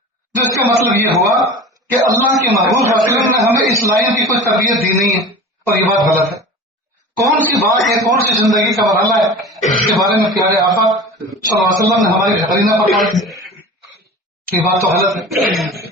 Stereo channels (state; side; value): normal; both; correlation 0.36